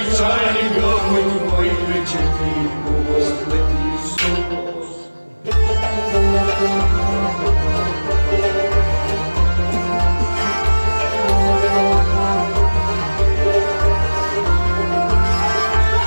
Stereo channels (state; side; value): inverted; both; correlation -1.00